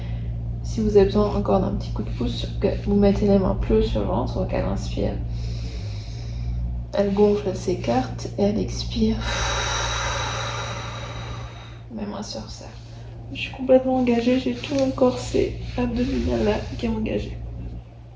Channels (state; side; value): identical; both; correlation 1.00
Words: Si vous avez besoin encore d'un petit coup de pouce, vous mettez les mains plus haut sur le ventre, donc elle inspire. Elle gonfle, elle s'écarte et elle expire. Mes mains se resserrent. Je suis complètement engagée, j'ai tout mon corset abdominal là qui est engagé.